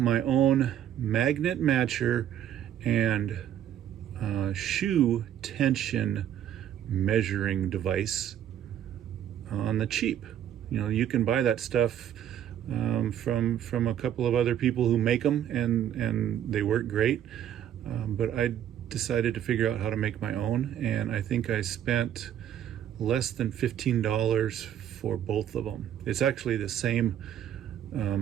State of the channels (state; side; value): quieter; left; 10.5 dB